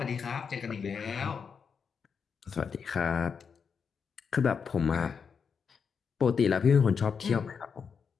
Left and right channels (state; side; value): quieter; right; 6.2 dB